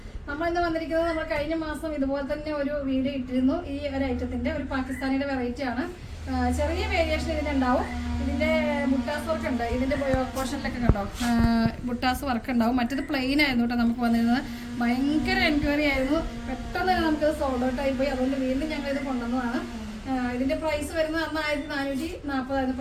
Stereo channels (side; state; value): both; identical; correlation 1.00